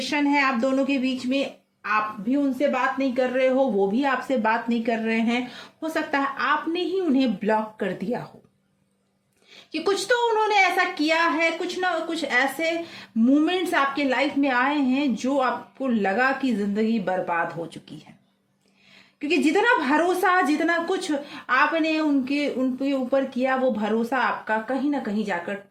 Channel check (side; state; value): both; identical; correlation 1.00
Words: है आप दोनों के बीच में। आप भी उनसे बात नहीं कर रहे हो, वो भी आपसे बात नहीं कर रहे हैं। हो सकता है आपने ही उन्हें ब्लॉक कर दिया हो कि कुछ तो उन्होंने ऐसा किया है, कुछ ना कुछ ऐसे मोमेंट्स आपके लाइफ में आए हैं जो आपको लगा कि जिंदगी बर्बाद हो चुकी है। क्योंकि जितना भरोसा, जितना कुछ आपने उनके ऊपर किया, वो भरोसा आपका कहीं ना कहीं जाकर